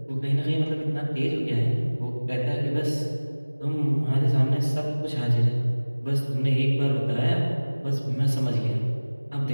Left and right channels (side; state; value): both; inverted; correlation -1.00